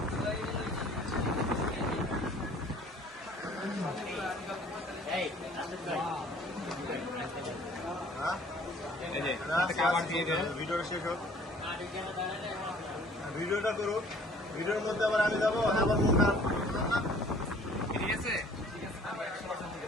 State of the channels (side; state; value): both; normal; correlation 0.54